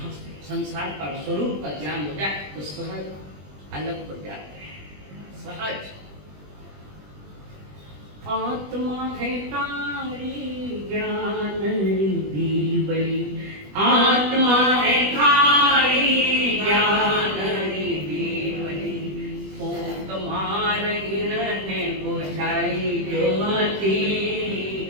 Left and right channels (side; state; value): left; late; 20 ms